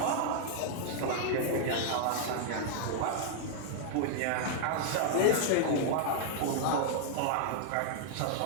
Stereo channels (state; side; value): different; both; correlation -0.01